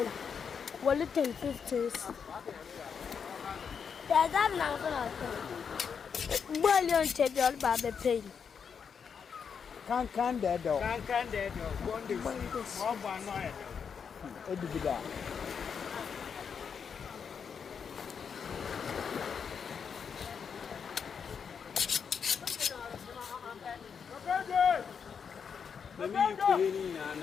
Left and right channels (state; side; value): quieter; right; 6.6 dB